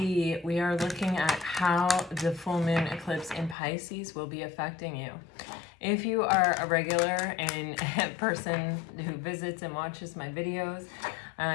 we are looking at how the full moon eclipse in Pisces will be affecting you. If you are a regular and a person who visits and watches my videos,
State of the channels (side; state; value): right; drops out; at 3.6 s